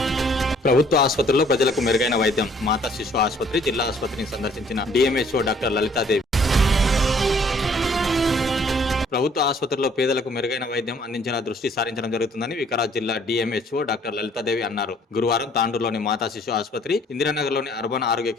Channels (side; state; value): both; normal; correlation 0.60